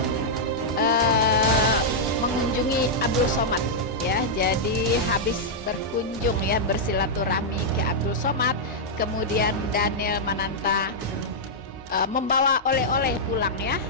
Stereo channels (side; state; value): both; normal; correlation -0.07